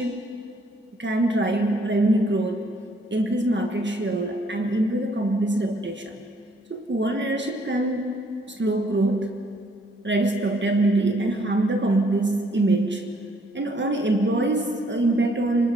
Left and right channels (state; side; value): normal; both; correlation 0.66